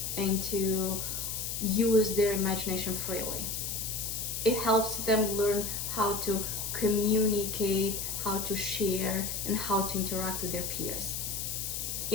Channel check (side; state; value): left; noise; hiss, 3 dB below the sound